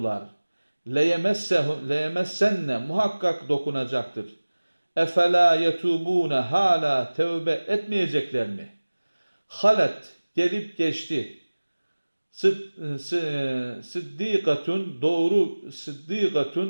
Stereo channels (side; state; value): both; inverted; correlation -1.00